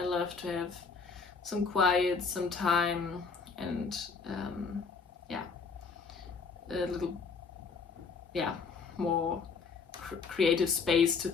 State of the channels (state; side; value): quieter; right; 5.1 dB